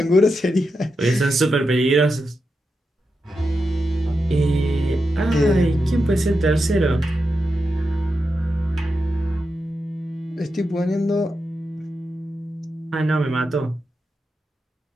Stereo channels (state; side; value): normal; both; correlation 0.88